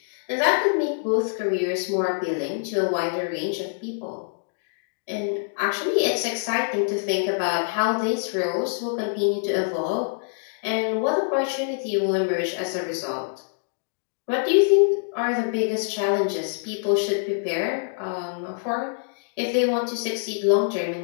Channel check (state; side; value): silent; right; digital silence